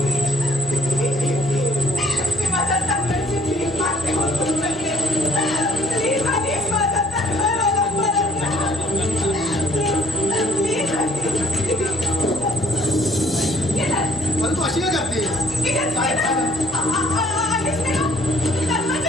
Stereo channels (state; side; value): normal; both; correlation 0.62